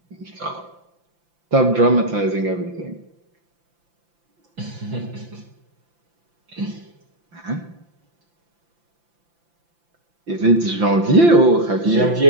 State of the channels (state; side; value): late; left; 5.8 ms